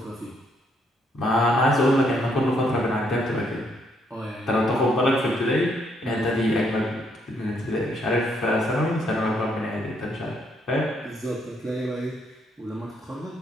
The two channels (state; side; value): normal; both; correlation 0.72